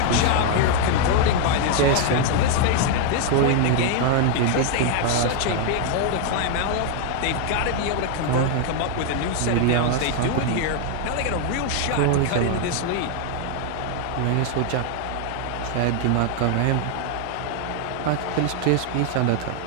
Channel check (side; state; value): both; different; correlation 0.00